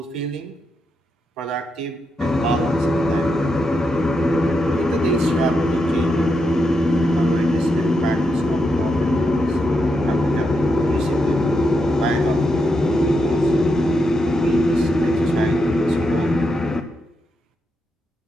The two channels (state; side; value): normal; both; correlation 0.84